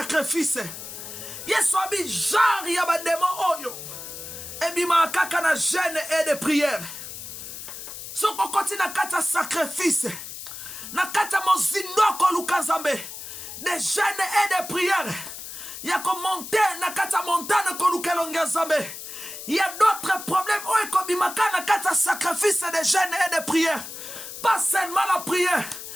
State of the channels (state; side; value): noise; left; hiss, 10 dB below the sound